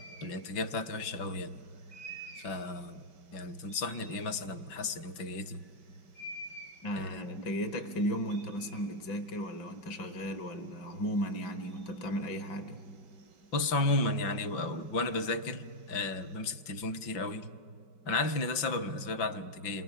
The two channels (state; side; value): late; right; 5.3 ms